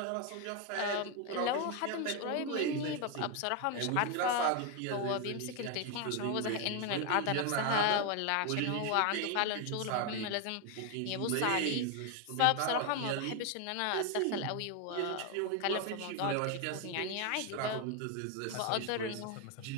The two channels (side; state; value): both; different; correlation 0.01